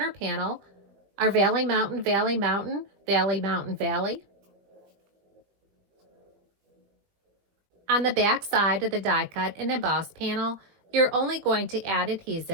panel are Valley Mountain, Valley Mountain, Valley Mountain, Valley. On the back side of the die cut and embossed panel, you're only going to add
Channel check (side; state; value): left; late; 20 ms